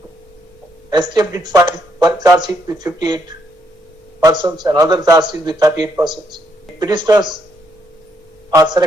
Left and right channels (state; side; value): normal; both; correlation 0.74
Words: STF did file one charge sheet with 58 persons and other charge sheet with 38 persons. Petitioners are